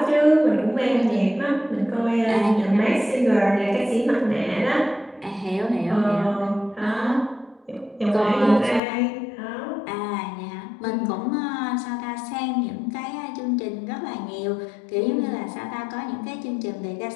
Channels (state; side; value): drops out; right; at 8.8 s